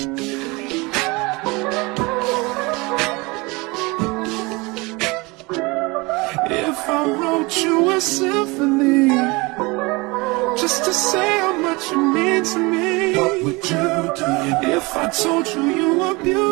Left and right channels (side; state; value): left; quieter; 25.3 dB